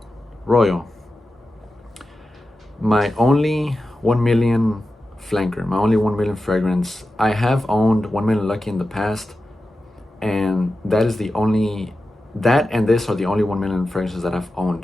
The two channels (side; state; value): both; normal; correlation 0.92